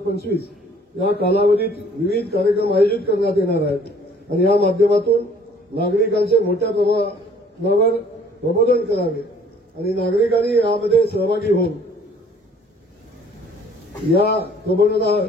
या कालावधीत विविध कार्यक्रम आयोजित करण्यात येणार आहेत आणि या माध्यमातून नागरिकांचे मोठ्या प्रमाणावर प्रबोधन करावे आणि नागरिकांनी यामध्ये सहभागी होऊन या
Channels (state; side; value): normal; both; correlation 0.56